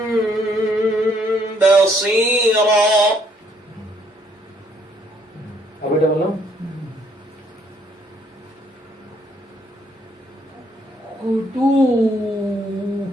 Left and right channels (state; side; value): normal; both; correlation 0.68